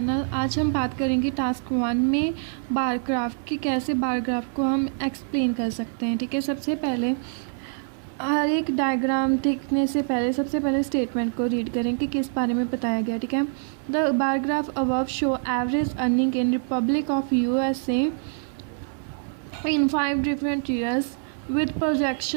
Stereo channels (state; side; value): silent; left; digital silence